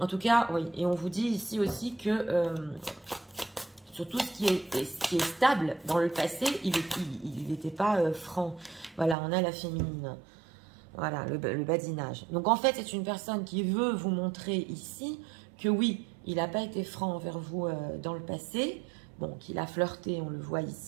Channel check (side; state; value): left; drops out; at 9.2 s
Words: tout cas, oui, et on vous dit ici aussi que sur tout ce qui est stable dans le passé, il n'était pas franc. Voilà, on a la féminine. Voilà, le badinage. Donc en fait, c'est une personne qui veut vous montrer ici que oui, il n'a pas été franc envers vous dans le passé. Bon, qu'il a flirté, on le voit